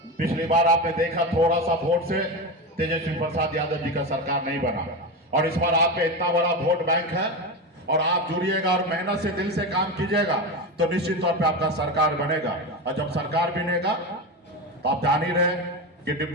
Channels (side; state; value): both; normal; correlation 0.19